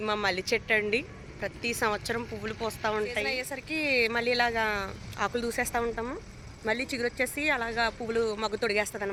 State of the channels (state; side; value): identical; both; correlation 1.00